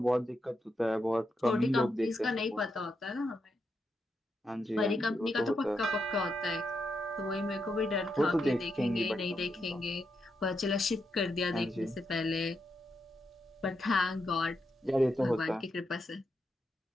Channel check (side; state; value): both; normal; correlation 0.83